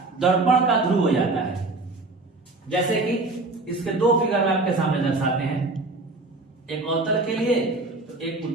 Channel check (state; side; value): quieter; left; 3.2 dB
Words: दर्पण का ध्रुव हो जाता है। जैसे कि इसके दो फिगर में आपके सामने दर्शाते हैं, एक अवतल के लिए तो एक